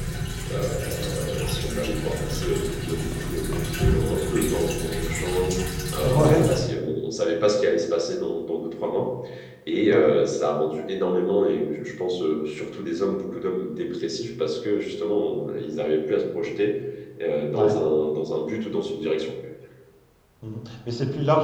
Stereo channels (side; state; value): both; identical; correlation 1.00